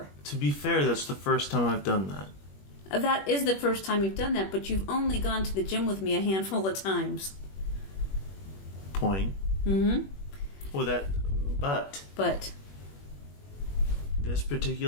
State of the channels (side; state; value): right; late; 21 ms